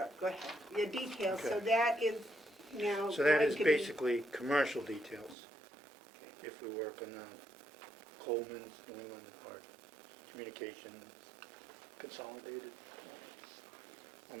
go ahead. Your details, so Okay. that is now. So that going is to be- basically commercial details. Okay. If we work on Coleman's, New England, or Communications, Consolidated, on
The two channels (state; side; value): drops out; left; at 5.4 s